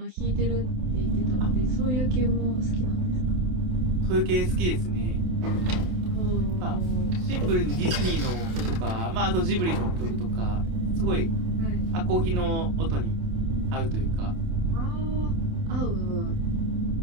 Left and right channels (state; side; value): late; left; 27 ms